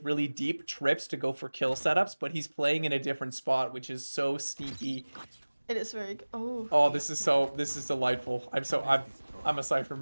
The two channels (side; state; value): both; inverted; correlation -1.00